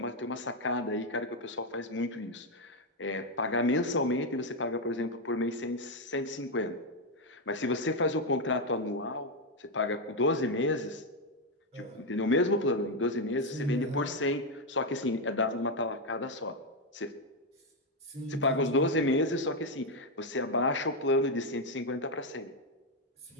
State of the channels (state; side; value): normal; both; correlation 0.04